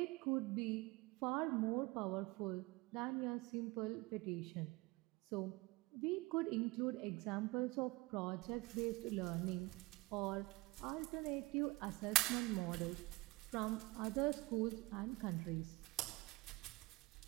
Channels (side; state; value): left; quieter; 21.6 dB